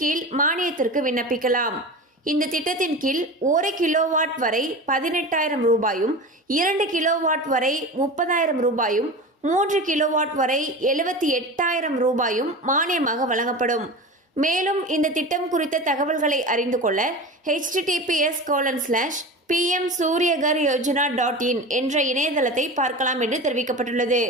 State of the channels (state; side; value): normal; both; correlation 0.30